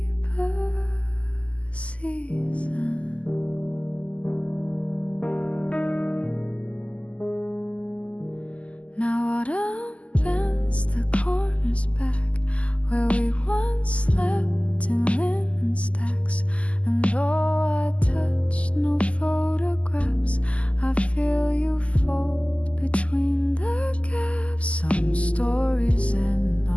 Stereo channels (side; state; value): right; late; 0.062 ms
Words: season. Now autumn bends the corners back where we once slept in linen stacks. And though I touched no photographs, I feel you fold between the gaps. Some stories end